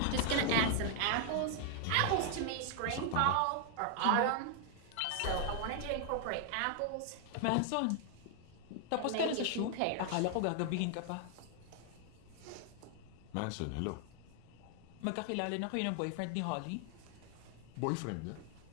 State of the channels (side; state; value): both; different; correlation 0.00